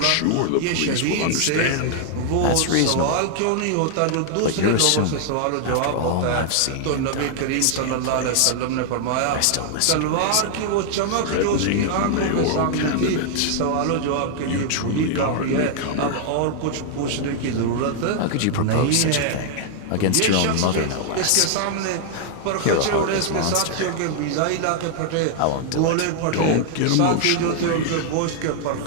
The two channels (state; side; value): different; both; correlation 0.00